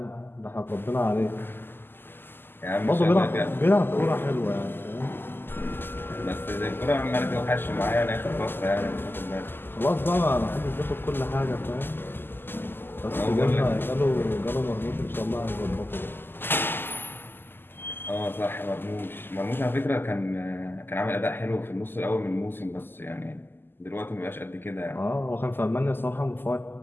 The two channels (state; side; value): late; right; 0.098 ms